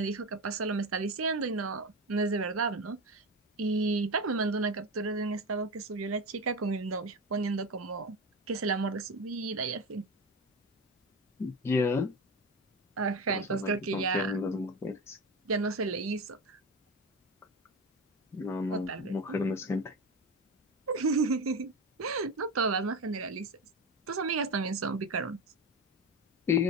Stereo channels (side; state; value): both; normal; correlation 0.22